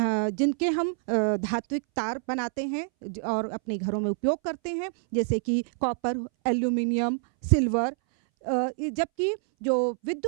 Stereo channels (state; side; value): silent; left; 60 dB below the other